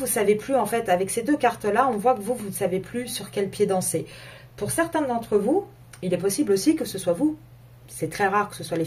ne savez plus en fait, avec ces deux cartes-là, on voit que vous ne savez plus sur quel pied danser. Pour certains d'entre vous, il est possible aussi que ce soit vous. C'est très rare que ce soit les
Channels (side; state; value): both; identical; correlation 1.00